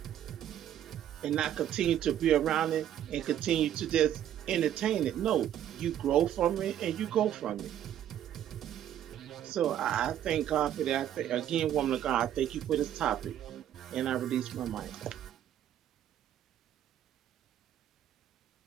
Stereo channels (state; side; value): quieter; left; 10.9 dB